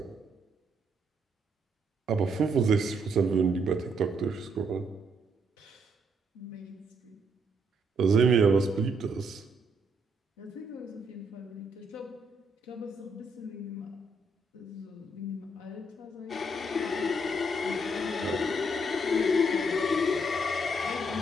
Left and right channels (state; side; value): normal; both; correlation 0.73